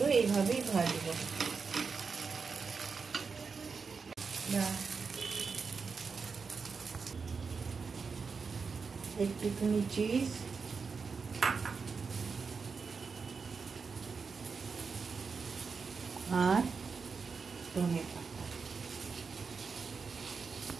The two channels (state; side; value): quieter; left; 5.1 dB